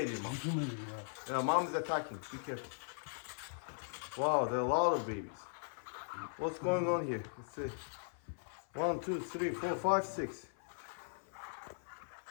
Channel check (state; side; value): silent; right; 52 dB below the other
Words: Hücum ediyor ya. Yeah, mom is attacking. Be careful. Wow, there are a lot of babies. What's going on here? Let's see. 1, 2, 3, 4, 5, 6.